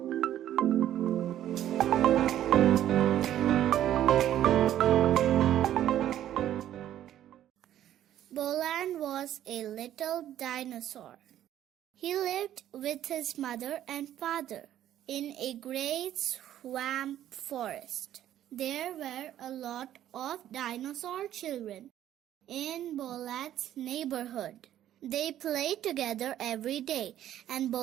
Boland was a little dinosaur. He lived with his mother and father in a great swamp forest. There were a lot of dinosaur children in Boland's neighborhood. They played together every day, and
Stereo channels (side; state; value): left; quieter; 11.8 dB